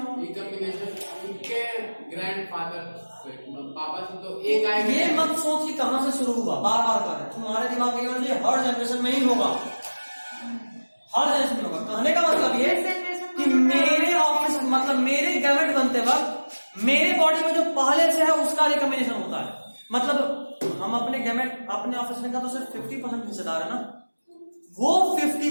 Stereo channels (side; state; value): both; inverted; correlation -1.00